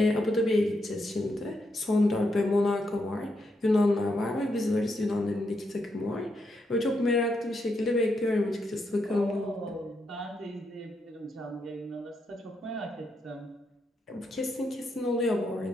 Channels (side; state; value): both; normal; correlation 0.81